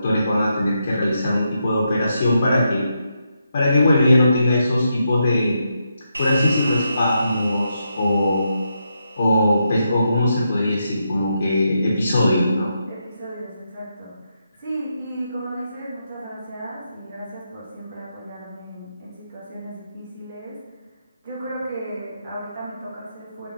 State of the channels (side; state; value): both; inverted; correlation -0.82